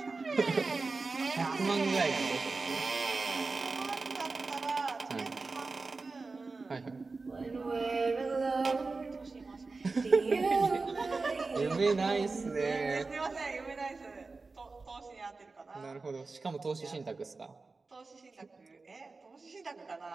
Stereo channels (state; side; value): quieter; left; 3.9 dB